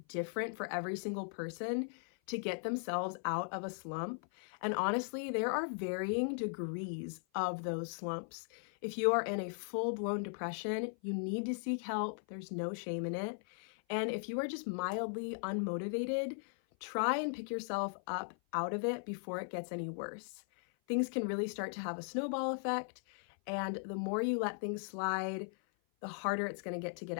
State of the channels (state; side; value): silent; right; 52 dB below the other